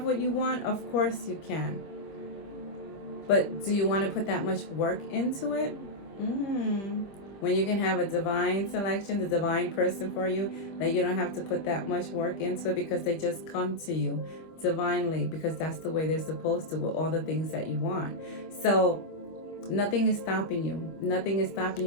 what you want? Of course you can. But do you want to put that much work into it? When you can have a divine selection, the divine person for you, that you don't have to put that much work into it because they just come to you divinely, because that's the way they're supposed to, with all the things that you want. So nothing is stopping you. Nothing is stopping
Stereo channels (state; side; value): late; right; 25 ms